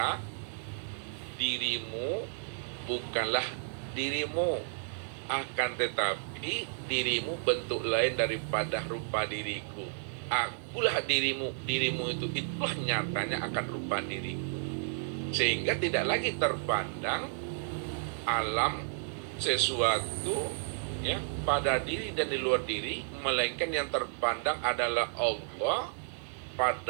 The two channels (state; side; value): silent; left; digital silence